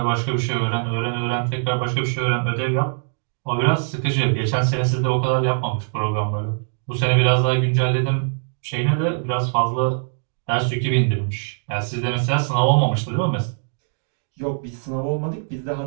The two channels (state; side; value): silent; left; digital silence